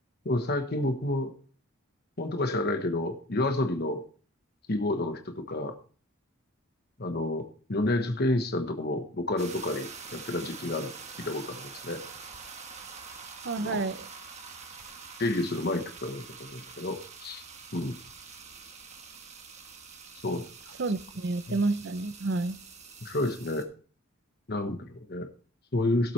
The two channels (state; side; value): normal; both; correlation 0.45